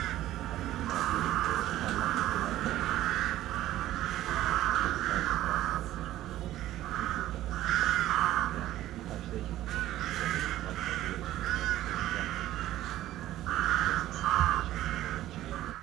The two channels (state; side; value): quieter; left; 14.2 dB